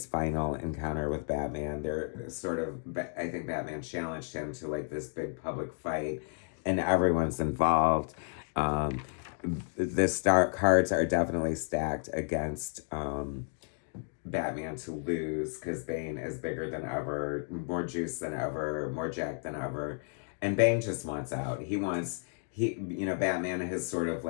final encounter with Batman. They're sort of, I think Batman challenged him to like this big public fight, and everyone's involved. The cards are definitely stacked against Batman to lose, because Bane is bigger than ever, more juice than ever, more jacked than ever. And Bane just wants out. You know, Batman has sort of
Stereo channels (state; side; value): silent; right; 56 dB below the other